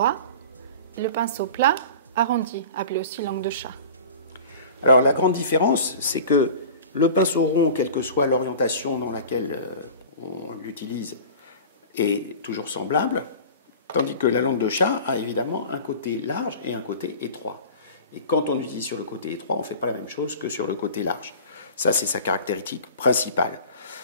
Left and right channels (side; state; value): both; inverted; correlation -0.38